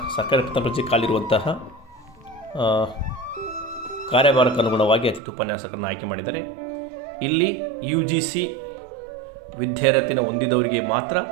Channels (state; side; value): drops out; left; at 5.2 s